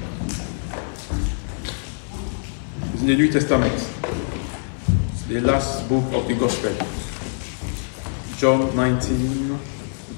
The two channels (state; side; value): silent; right; 63 dB below the other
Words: It's in the New Testament. It's the last book of the Gospel. John 19,